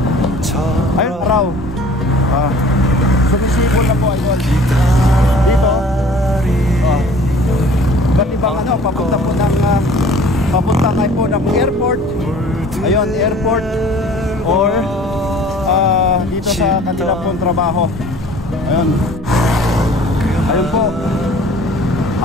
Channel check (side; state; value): both; normal; correlation 0.49